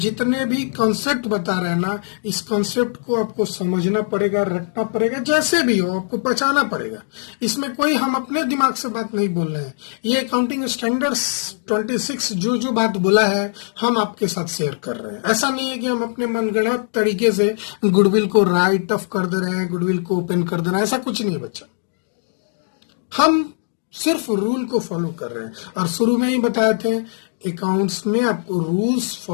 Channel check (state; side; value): silent; right; digital silence